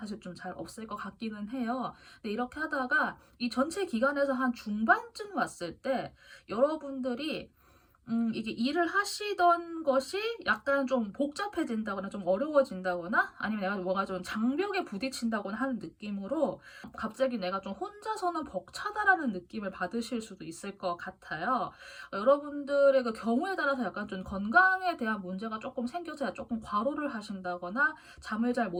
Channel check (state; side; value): identical; both; correlation 1.00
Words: 좀 잘 없을 것 같기는 해요. 근데 이렇게 하다가 이 전체 기간에서 한 중반쯤 왔을 때 여러분들이 이게 일을 하시던 것이 약간 좀 복잡해진다거나 좀 어려워진다거나 아니면 내가 뭔가 좀 장벽에 부딪힌다거나 하는 느낌으로 갑자기 내가 좀 혼자서는 벅차다라는 느낌을 받으실 수도 있을 것 같아요. 여러분들의 그 경우에 따라서 약간 좀 건강에 대한 문제가 조금 생겨서 조금 과로를 하신다거나 잠을 잘